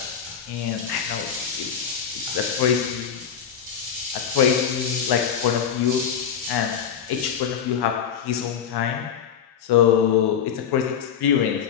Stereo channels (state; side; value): quieter; right; 7.9 dB